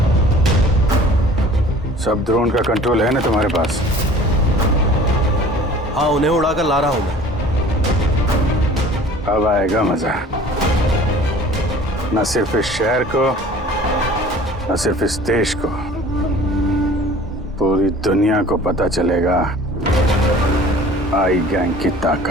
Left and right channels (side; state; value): both; normal; correlation 0.47